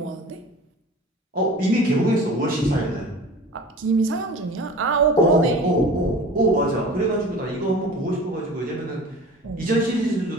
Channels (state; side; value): normal; both; correlation 0.40